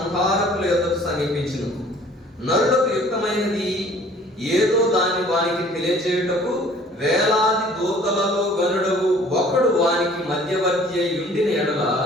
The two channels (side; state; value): both; normal; correlation 0.53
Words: యొద్దకు సమీపించును. నరులకు యుక్తమైనది ఏదో దాన్ని వానికి తెలియజేయుటకు వేలాది దూతలలో గనుడవు ఒకడు వానికి మధ్యవర్తి అయి ఉండిన ఎడల